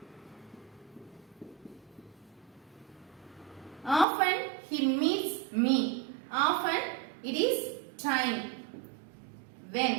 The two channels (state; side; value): drops out; left; at 4.0 s